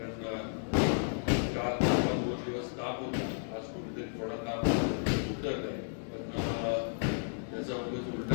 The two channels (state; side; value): silent; right; digital silence